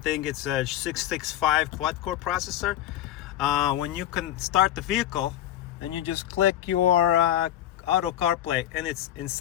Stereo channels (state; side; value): quieter; right; 12.2 dB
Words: it's a 665 quad-core processor. When you can start the vehicle, then you just click your auto CarPlay, and it's in